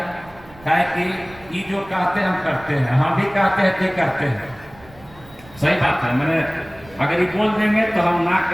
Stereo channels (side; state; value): right; noise; rumble, 23 dB below the sound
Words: है कि ये जो कहते हैं हम करते हैं, हम भी कहते हैं तो करते हैं। सही बात है। मैंने अगर ये बोल देंगे तो हम ना